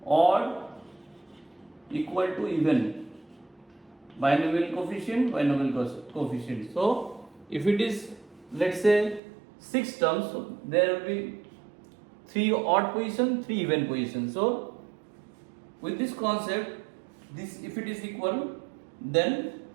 odd equal to even. Binomial coefficient. So if it is, let's say 6 terms, so there will be 3 odd position, 3 even position. So with this concept, this if it is equal, then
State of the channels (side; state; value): left; drops out; at 9.2 s